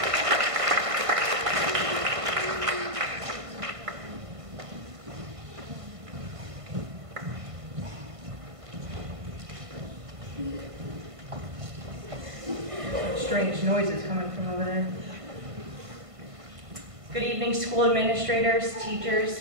Strange noises coming from over there. Good evening, school administrators,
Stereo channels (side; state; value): left; late; 1.5 ms